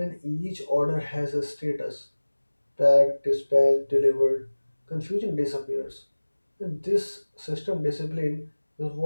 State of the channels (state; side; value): inverted; both; correlation -1.00